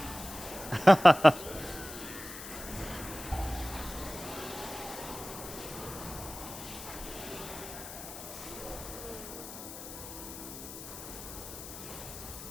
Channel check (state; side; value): noise; left; hiss, 11 dB below the sound